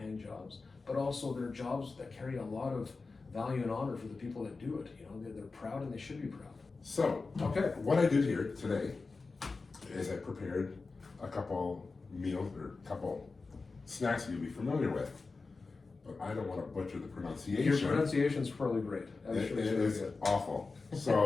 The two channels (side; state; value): right; quieter; 4.0 dB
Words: jobs, but also they're jobs that carry a lot of value and honor for the people that do it. You know, they're proud, and they should be proud. So, okay, what I did here today is I prepared a couple meals, or a couple snacks you'll be familiar with, but I don't want to butcher the pronunciation. Your pronunciation's probably great. It is awful.